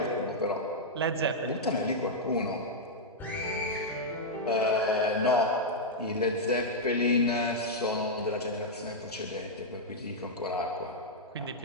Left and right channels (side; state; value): both; normal; correlation -0.05